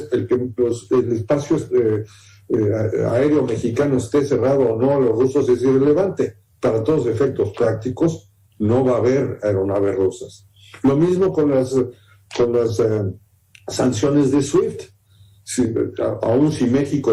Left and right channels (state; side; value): identical; both; correlation 1.00